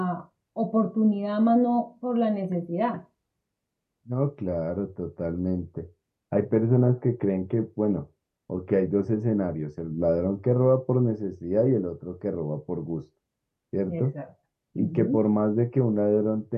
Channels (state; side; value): identical; both; correlation 1.00